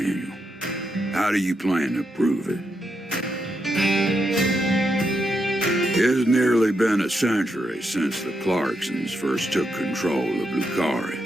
how do you plan to prove it? It's nearly been a century since the Clarksons first took control of Lucari.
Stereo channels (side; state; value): both; normal; correlation 0.82